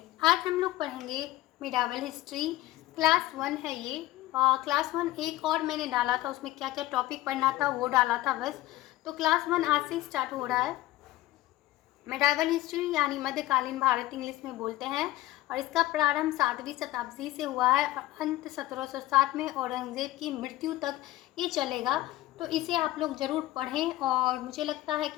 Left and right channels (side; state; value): right; quieter; 16.4 dB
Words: आज हम लोग पढ़ेंगे मिडावल हिस्ट्री। क्लास 1 है ये। क्लास 1 एक और मैंने डाला था, उसमें क्या क्या टॉपिक पढ़ना था वो डाला था बस। तो क्लास 1 आज से स्टार्ट हो रहा है। मिडावल हिस्ट्री यानी मध्यकालीन भारत इंग्लिश में बोलते हैं, और इसका प्रारंभ 7वीं शताब्दी से हुआ है और अंत 1707 में औरंगजेब की मृत्यु तक ये चलेगा। तो इसे आप लोग ज़रूर पढ़ें, और मुझे लगता है